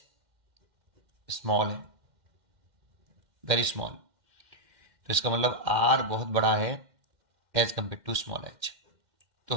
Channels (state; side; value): late; left; 2.1 ms